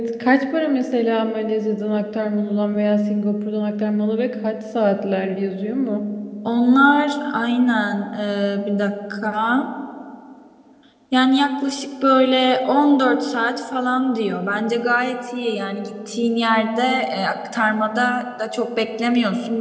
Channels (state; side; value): identical; both; correlation 1.00